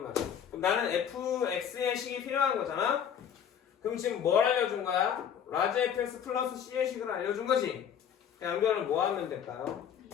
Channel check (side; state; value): right; quieter; 8.5 dB